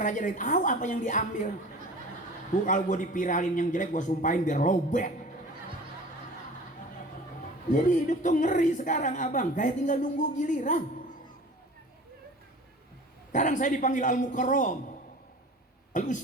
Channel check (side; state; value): both; normal; correlation 0.41